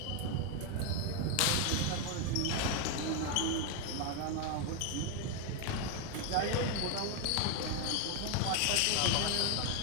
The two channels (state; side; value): different; both; correlation 0.01